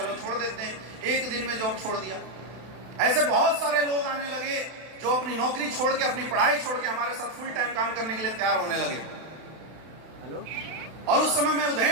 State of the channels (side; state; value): left; late; 32 ms